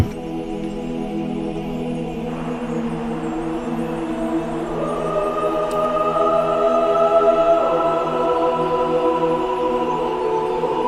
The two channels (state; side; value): identical; both; correlation 1.00